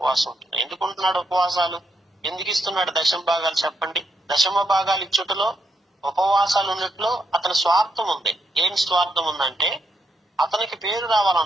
ఉంటున్నాడు. ఎందుకు ఉంటున్నాడు ఉపవాసాలు, ఎందుకు ఇస్తున్నాడు దశమ భాగాలు చెప్పండి? దశమ భాగాలు ఇచ్చుటలో, ఉపవాసాలు ఉన్నట్లో అతని స్వార్థం ఉంది. ఏం స్వార్థం ఉందంటే అతనికి పేరు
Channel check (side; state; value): both; normal; correlation 0.78